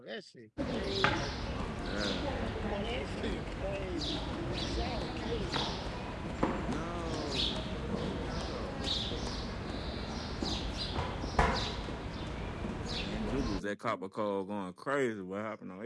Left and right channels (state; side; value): identical; both; correlation 1.00